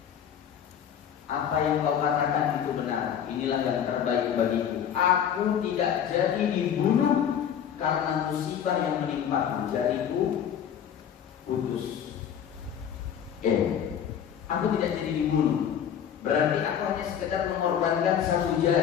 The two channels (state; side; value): quieter; right; 8.8 dB